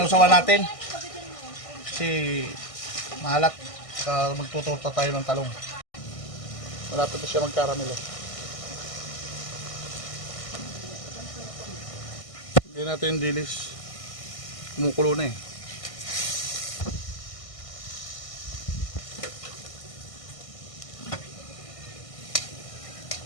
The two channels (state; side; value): late; right; 1.6 ms